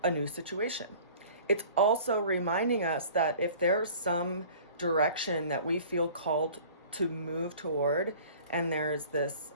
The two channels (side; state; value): both; inverted; correlation -0.47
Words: a new situation. It's also reminding us that if there's some direction that we feel called to move toward and there's this